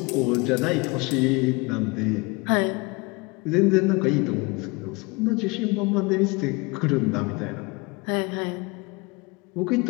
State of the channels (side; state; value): right; quieter; 26.8 dB